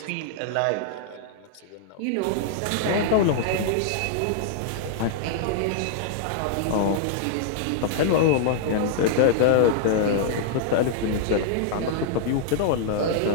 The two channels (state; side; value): different; both; correlation -0.01